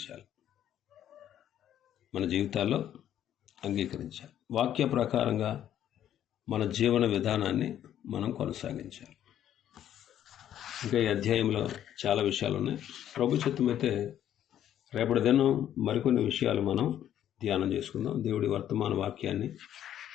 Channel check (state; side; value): quieter; right; 10.9 dB